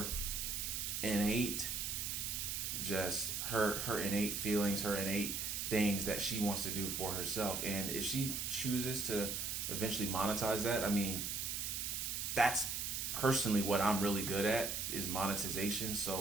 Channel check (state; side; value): noise; right; hiss, 2 dB below the sound